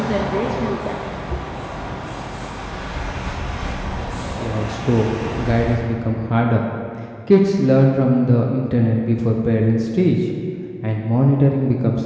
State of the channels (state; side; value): identical; both; correlation 1.00